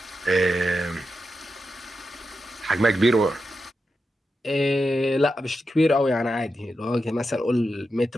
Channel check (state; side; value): normal; both; correlation 0.89